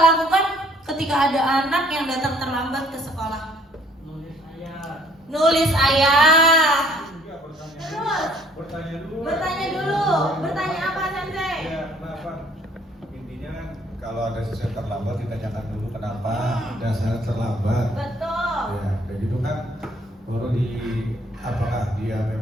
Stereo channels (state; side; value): normal; both; correlation 0.61